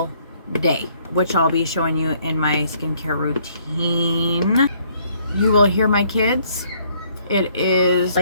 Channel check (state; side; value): inverted; both; correlation -0.65